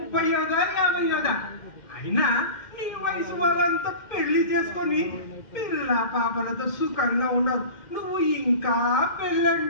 50వ? అయినా నీ వయసు వాళ్ళంతా పెళ్లి చేసుకొని పిల్ల పాపలతో సుఖంగా ఉండవు. నువ్వు ఇంకా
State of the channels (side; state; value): right; late; 2.1 ms